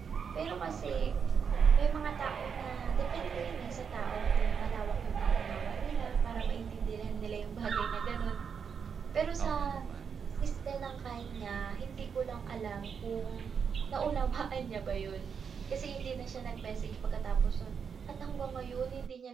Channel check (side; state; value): left; quieter; 6.6 dB